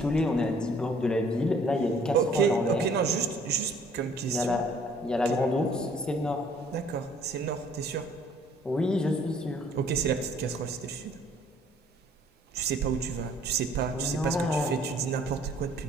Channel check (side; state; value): both; normal; correlation 0.58